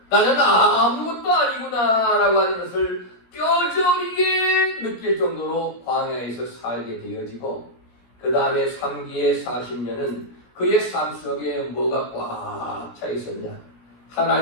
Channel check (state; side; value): late; right; 17 ms